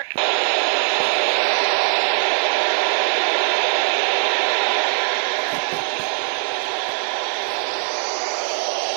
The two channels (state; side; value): silent; left; 60 dB below the other